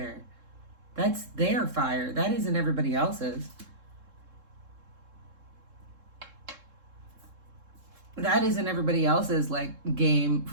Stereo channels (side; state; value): left; late; 3.7 ms